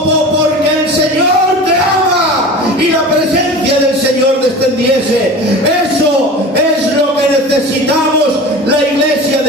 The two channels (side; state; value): both; normal; correlation 0.35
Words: el Señor te ama y la presencia del Señor descendiese. Eso es lo que necesitamos la iglesia